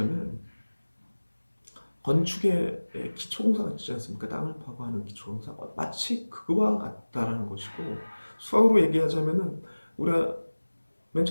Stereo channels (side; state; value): both; inverted; correlation -1.00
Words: 건축의 기초공사가 있지 않습니까? 땅을 파고 하는 기초공사 마치 그거와 같다라는 것이고 수학으로 얘기하자면은 우리가 맨